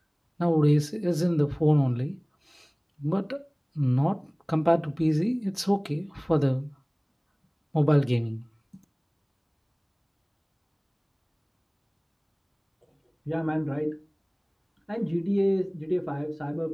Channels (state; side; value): identical; both; correlation 1.00